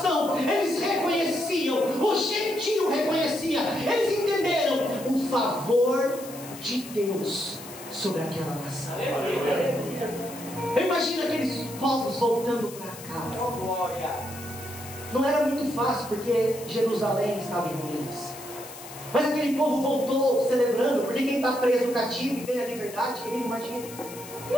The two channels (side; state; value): left; noise; hiss, 15 dB below the sound